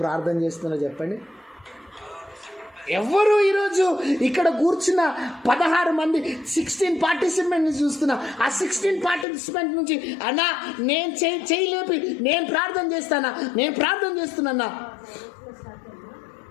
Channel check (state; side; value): drops out; right; at 9.2 s